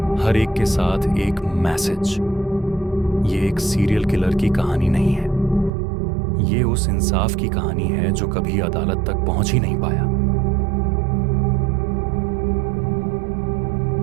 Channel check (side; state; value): left; drops out; at 5.7 s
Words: हर एक के साथ एक मैसेज। ये एक सीरियल किलर की कहानी नहीं है, ये उस इंसाफ की कहानी है जो कभी अदालत तक पहुंच ही नहीं पाया।